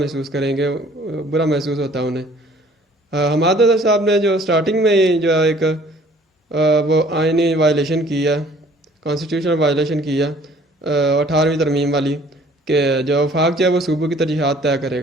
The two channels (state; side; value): normal; both; correlation 0.55